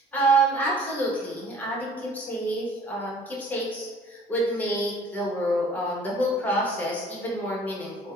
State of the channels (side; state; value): both; normal; correlation 0.52